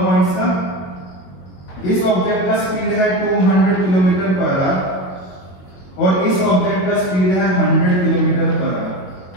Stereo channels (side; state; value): right; late; 21 ms